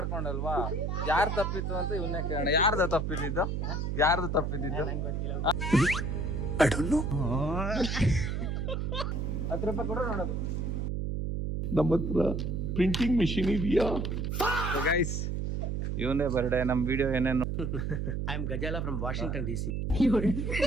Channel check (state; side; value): noise; right; hum, 1 dB below the sound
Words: ಯಾರು ತಪ್ಪಿತ್ತು ಅಂತ ಇವನ್ನೇ ಕೇಳೋಣ. ಯಾರ್ದು ತಪ್ಪಿದ್ದು? 10 ರೂಪಾಯಿ ಕೂಡ ನೋಡೋದು. ನಮ್ಮ ಹತ್ರ ಪ್ರಿಂಟಿಂಗ್ ಮಿಷಿನ್ ಇದೆಯಾ? ಗೈಸ್, ಇವನೇ ಬರ್ಡೇ. ನಮ್ ವಿಡಿಯೋ ಏನೇನು I am Gajala from Washington DC.